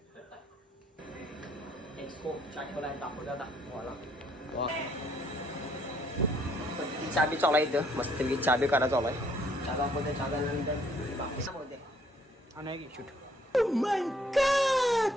एक्सपो चाटोला दाखवू दादा चहा बी चालू आहे इथं मस्त चहा बी काढा चालू आहे चहा दाखवते चहा झाल्यानंतर बाकी सांगते आणि शूट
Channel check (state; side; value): normal; both; correlation 0.65